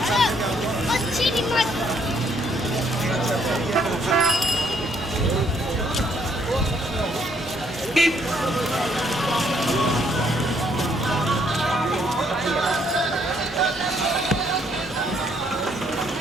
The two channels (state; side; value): normal; both; correlation 0.69